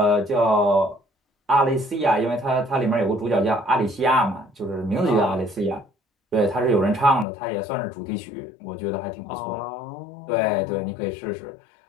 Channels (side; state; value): right; drops out; at 7.2 s